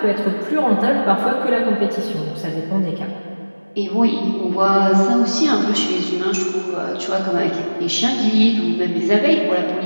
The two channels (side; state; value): both; inverted; correlation -1.00